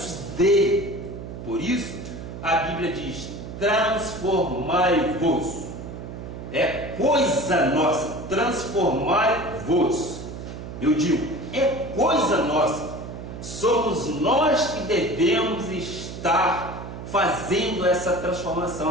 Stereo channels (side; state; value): right; noise; hum, 10 dB below the sound